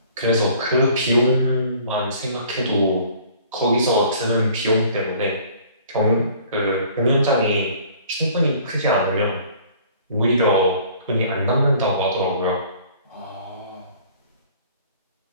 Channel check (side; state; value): both; inverted; correlation -0.53